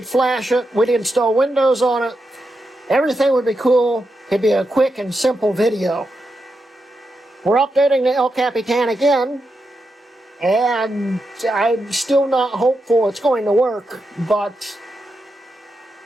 flash it, we'd install Windows on it, everything would be cool, it'd be a quick and simple video. We're updating the El Capitan again, and I'm still not hopeful it's going to work, but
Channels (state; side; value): normal; both; correlation 0.86